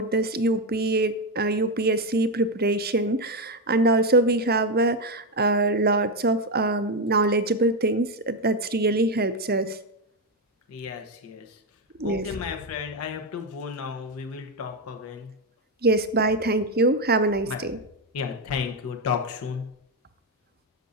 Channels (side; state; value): both; normal; correlation 0.08